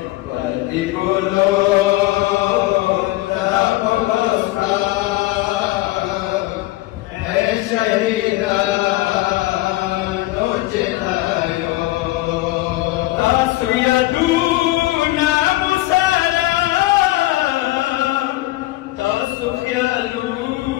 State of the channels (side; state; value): right; quieter; 18.3 dB